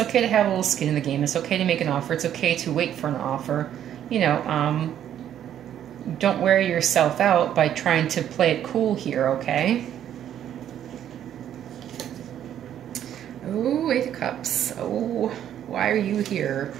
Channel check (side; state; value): left; quieter; 10.4 dB